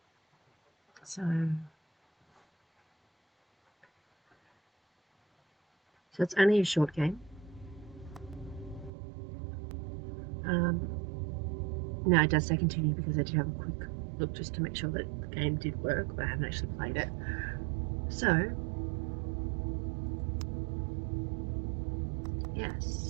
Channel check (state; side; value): drops out; left; at 8.9 s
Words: So it's only a short game. Now it does say continue because I did have a quick look just to make sure that the game did work, but I haven't actually played it. So,